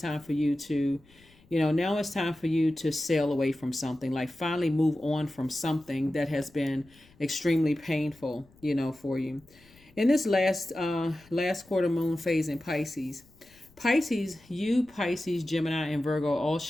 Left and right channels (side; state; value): left; noise; rumble, 28 dB below the sound